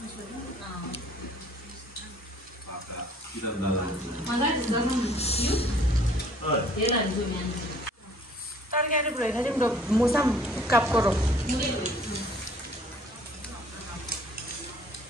तरकारी भएन तिम्रो मुसा काप करो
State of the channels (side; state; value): both; normal; correlation 0.56